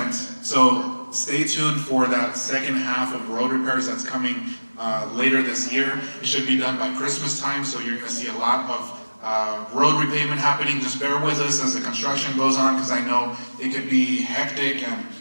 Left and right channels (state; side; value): inverted; both; correlation -1.00